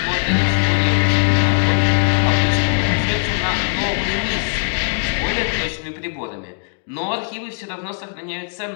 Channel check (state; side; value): silent; right; digital silence